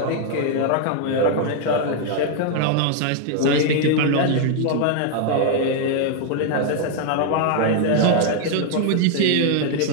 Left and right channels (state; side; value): different; both; correlation 0.00